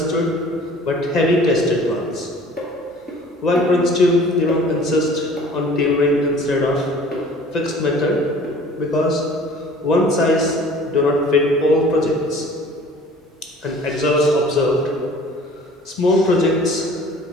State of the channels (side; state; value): both; normal; correlation 0.48